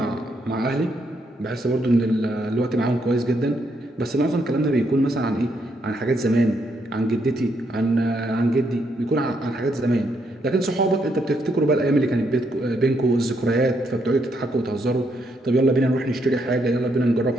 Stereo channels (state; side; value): normal; both; correlation 0.76